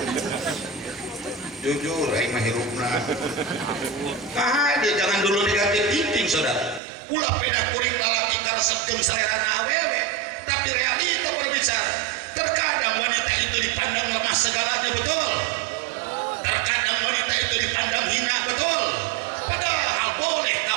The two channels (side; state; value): left; drops out; at 6.8 s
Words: Jujur aing mah hirupna dia jangan dulu negatif thinking saudara. Ulah peda kuring lalaki karesep jeung salerana awewe tapi realita berbicara. Terkadang wanita itu dipandang lemah segalanya, betul? Terkadang wanita itu dipandang hina, betul? Padahal